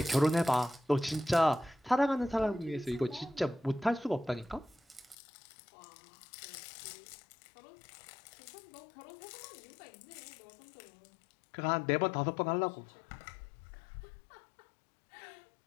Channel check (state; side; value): drops out; right; at 5.2 s